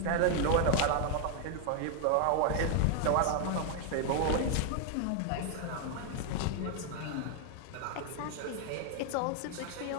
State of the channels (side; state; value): both; different; correlation 0.00